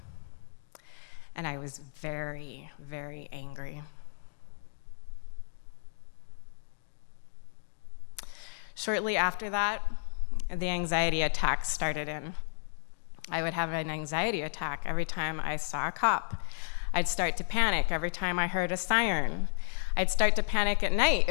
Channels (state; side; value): silent; right; digital silence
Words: And I was very, very angry. Shortly after that, the anxiety attacks started in. I would have an anxiety attack every time I saw a cop. I'd start to panic every time I heard a siren. I'd start to panic at night